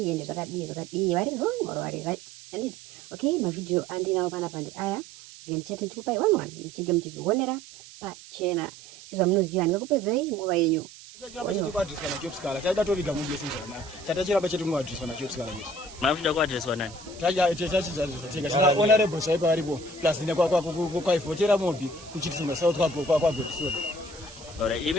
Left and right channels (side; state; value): right; noise; hiss, 18 dB below the sound